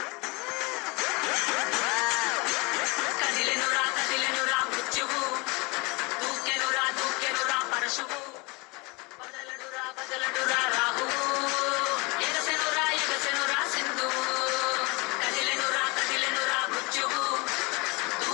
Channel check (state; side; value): quieter; right; 27.0 dB